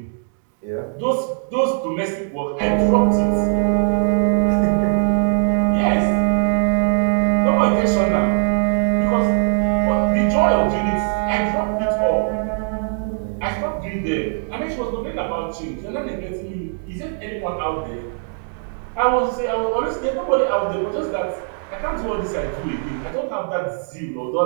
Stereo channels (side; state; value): left; silent; digital silence